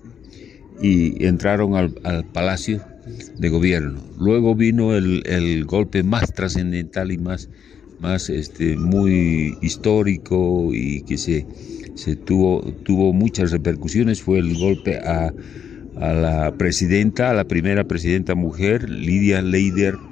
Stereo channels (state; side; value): quieter; right; 8.0 dB